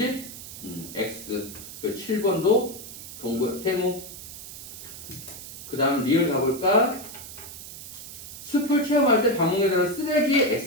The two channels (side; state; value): right; noise; hiss, 12 dB below the sound